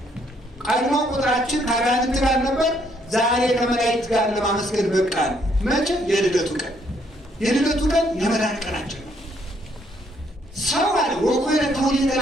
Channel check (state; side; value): normal; both; correlation 0.69